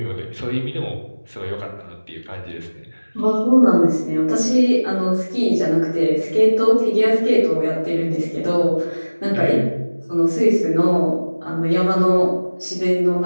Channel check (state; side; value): inverted; both; correlation -1.00